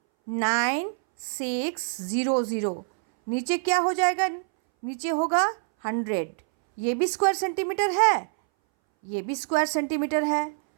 नीचे क्या हो जाएगा, नीचे होगा 100। ये भी स्क्वायर सेंटीमीटर है, ये भी स्क्वायर सेंटीमीटर है,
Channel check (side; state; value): left; silent; 61 dB below the other